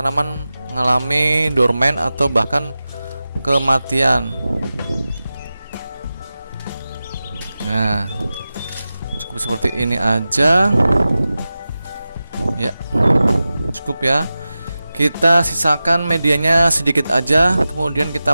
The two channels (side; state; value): both; inverted; correlation -0.94